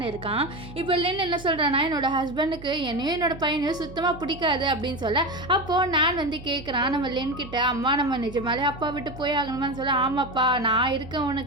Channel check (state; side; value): noise; right; hum, 16 dB below the sound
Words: இருக்கான். இப்போ லின் என்ன சொல்கிறான்னா, என்னோட ஹஸ்பண்டுக்கு என்னையும் என்னோட பையனையும் சுத்தமாக பிடிக்காது அப்படின்னு சொல்ல, அப்போது நான் வந்து கேட்குறான் நம்ம லின் கிட்ட, அம்மா நம்ம நிஜமாலே அப்பா விட்டு போய் ஆகணுமான்னு சொல்ல, ஆமாப்பா நான் இருக்கேன்,